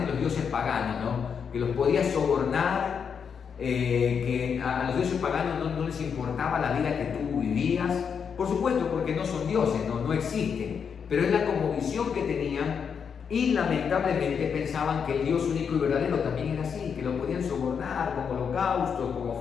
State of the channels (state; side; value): quieter; right; 6.8 dB